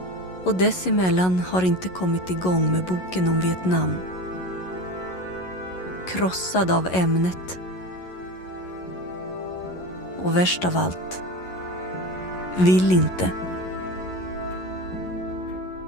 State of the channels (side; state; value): right; late; 11 ms